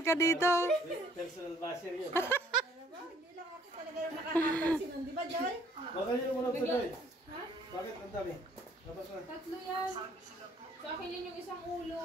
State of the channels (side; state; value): both; normal; correlation 0.61